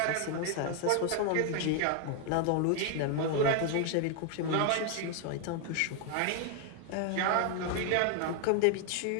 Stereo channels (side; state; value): both; different; correlation 0.00